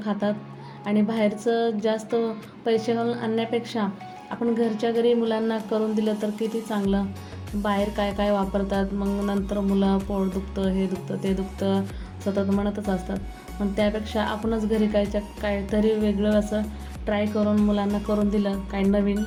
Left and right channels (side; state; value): both; identical; correlation 1.00